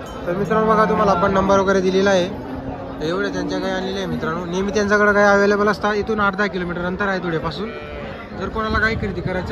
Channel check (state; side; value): identical; both; correlation 1.00